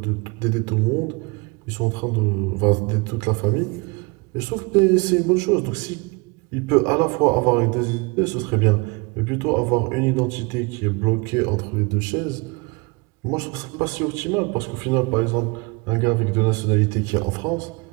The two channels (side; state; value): left; quieter; 28.1 dB